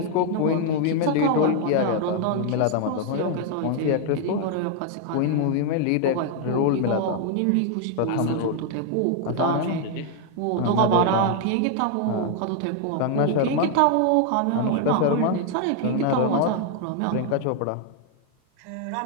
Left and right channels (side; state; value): both; different; correlation 0.00